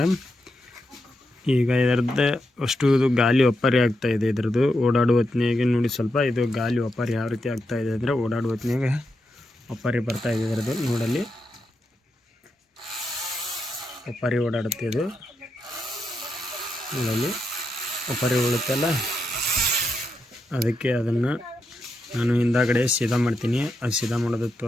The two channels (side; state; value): both; normal; correlation 0.85